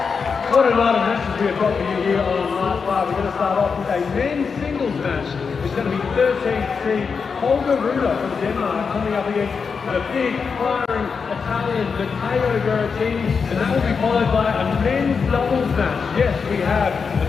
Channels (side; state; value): right; quieter; 5.5 dB